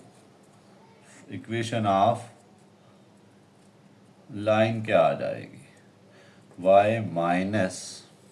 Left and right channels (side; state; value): both; identical; correlation 1.00